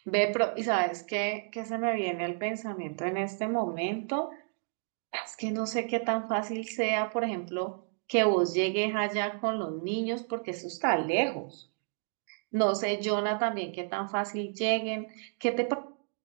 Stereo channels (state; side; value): silent; left; 57 dB below the other